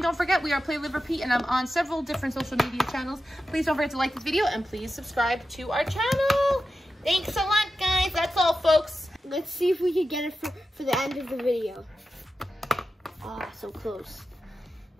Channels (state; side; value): normal; both; correlation 0.91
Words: don't forget, we are Play, Live, Repeat, and I'm on several different social media channels. Please don't forget to like this video, and please subscribe to our channel. Thanks a lot, guys. That's all, folks. Let's see if we can get it for the end of the video. Ah, so close.